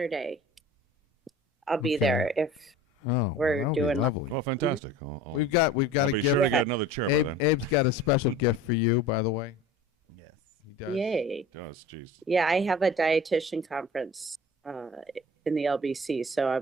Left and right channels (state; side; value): normal; both; correlation 0.41